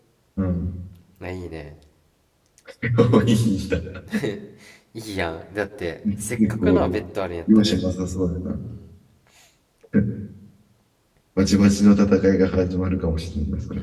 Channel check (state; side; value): identical; both; correlation 1.00